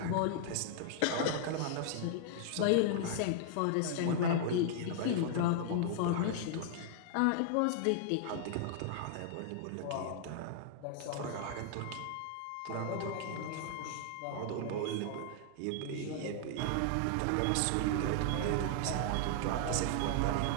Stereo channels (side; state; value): both; different; correlation -0.01